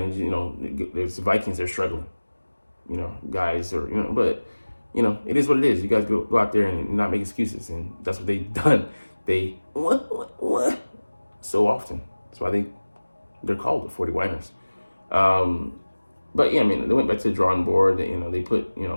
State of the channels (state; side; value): inverted; both; correlation -1.00